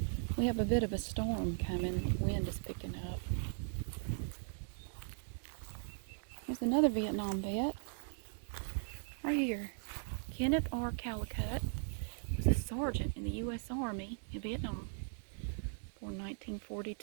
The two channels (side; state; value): left; silent; digital silence